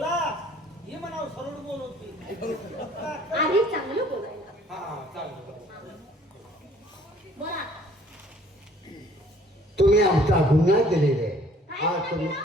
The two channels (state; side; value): normal; both; correlation 0.57